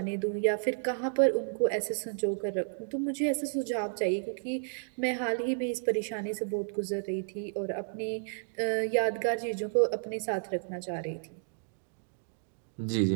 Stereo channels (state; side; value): silent; left; digital silence